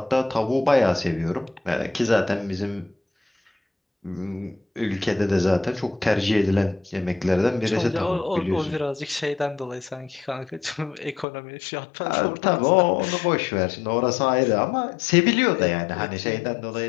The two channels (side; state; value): right; drops out; at 11.2 s